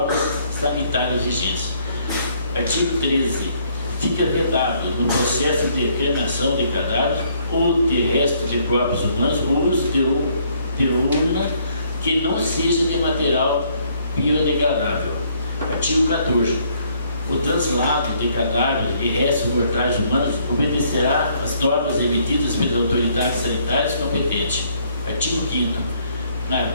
sanitárias vigentes. Artigo 13. Fica vedado no processo de cremação de cadáveres ou de restos de corpos humanos o uso de urna que não seja de material biodegradável. Artigo 14. O translado de cadáveres e restos mortais humanos obedecerá às normas emitidas pelas autoridades sanitárias competentes. Artigo 5º. Na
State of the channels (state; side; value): inverted; both; correlation -0.66